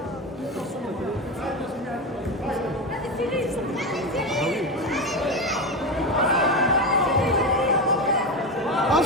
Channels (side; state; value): both; normal; correlation 0.17